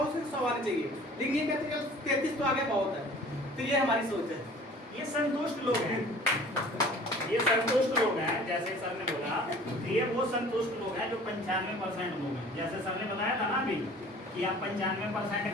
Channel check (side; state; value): both; normal; correlation 0.47